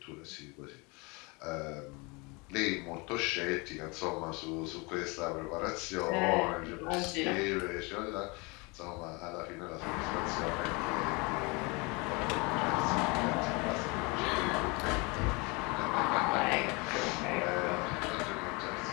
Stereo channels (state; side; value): quieter; right; 28.2 dB